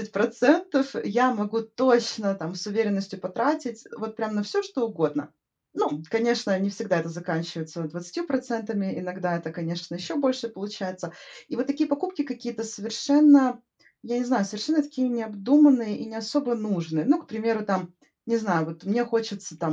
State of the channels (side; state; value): both; identical; correlation 1.00